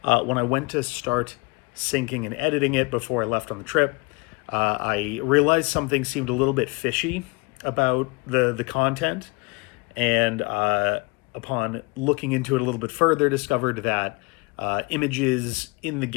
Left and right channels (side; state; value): right; quieter; 27.7 dB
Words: when I went to start syncing and editing it before I left on the trip, I realized something seemed a little bit fishy about the content, and upon looking into it a little bit further, discovered that images in the